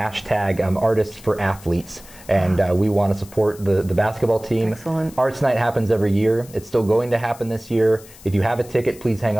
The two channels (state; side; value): noise; left; hiss, 21 dB below the sound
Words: Artists for Athletes. And we want to support the basketball team. Excellent. Arts Night happens every year. It's still going to happen this year. If you have a ticket, please hang